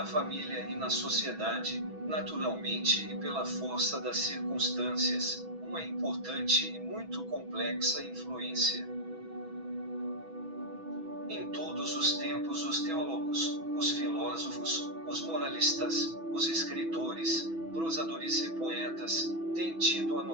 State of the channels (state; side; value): late; left; 6.1 ms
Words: família e na sociedade, naturalmente e pela força das circunstâncias, uma importante e muito complexa influência. Em todos os tempos os teólogos, os filósofos, os moralistas, os escritores, prosadores e poetas, têm tido a